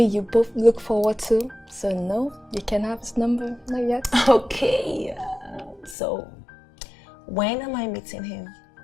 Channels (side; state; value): right; drops out; at 6.0 s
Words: you both look forward to. So no, you can't have his number. Not yet. Okay. So, when am I meeting him?